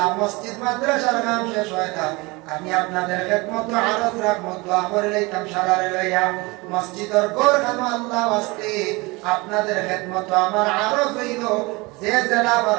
মসজিদ মাদ্রাসার কাম শেষ হয় না আমি আপনাদের খেদমত আরজ রাখবো দোয়া করে লইতাম সারারে লইয়া মসজিদের ঘর খানো আল্লাহ ওয়াস্তে আপনাদের খেদমত আমার আরজ হইল যে জেলা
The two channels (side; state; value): left; quieter; 24.5 dB